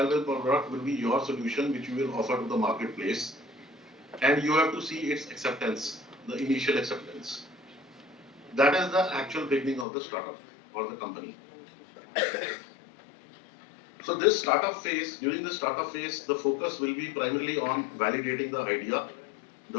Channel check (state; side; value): drops out; right; at 9.9 s